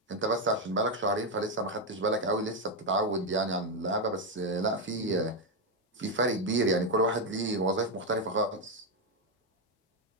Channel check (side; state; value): both; normal; correlation 0.05